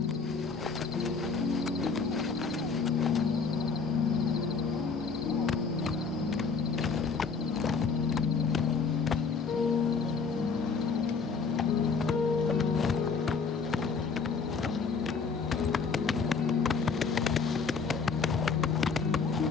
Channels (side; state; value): right; quieter; 5.1 dB